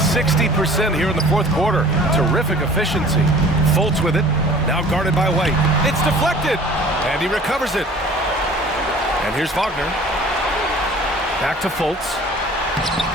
here in the 4th quarter. Terrific efficiency. Fultz with it. Now guarded by White. It's deflected. And he recovers it. And here's Wagner. Back to Fultz.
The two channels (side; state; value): both; normal; correlation 0.48